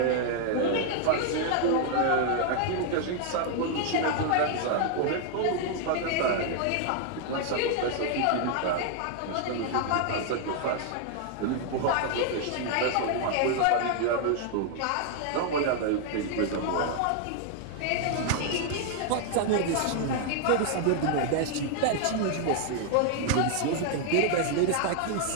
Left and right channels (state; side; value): different; both; correlation 0.00